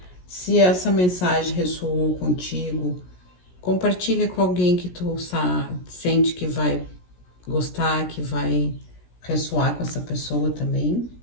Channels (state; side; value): late; right; 17 ms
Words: Se essa mensagem ressoou contigo, compartilha com alguém que tu sente que vai gostar, que vai ressoar com essa pessoa também.